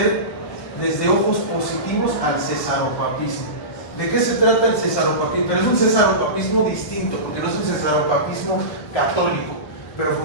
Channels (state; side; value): late; right; 1.4 ms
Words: desde ojos positivos al cesaropapismo. ¿De qué se trata el cesaropapismo? Pero es un cesaropapismo distinto, porque no es un cesaropapismo católico, pero